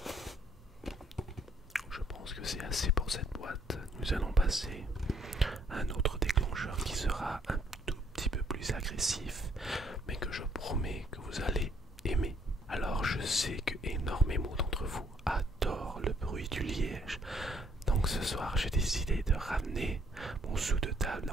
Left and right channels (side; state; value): both; normal; correlation 0.66